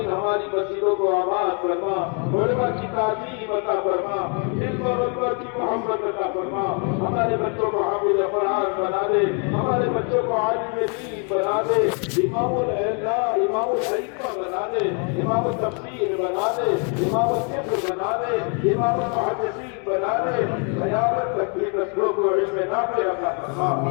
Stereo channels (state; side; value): quieter; right; 38.6 dB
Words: ہماری مسجدوں کو آباد فرما، علماء کی تعظیم عطا فرما، علم اور اکبر کی محبت عطا فرما، ہمارے بچوں کو حافظ قرآن بنا دے، ہمارے بچوں کو عالم دین بنا دے، امام العلماء امام الحکمہ بنا دے، امام التفسیر بنا دے، امام الفقہ بنا دے، امام المحدثین بنا دے، قیامت تک کی نسلوں کو علم نافع عطا فرما۔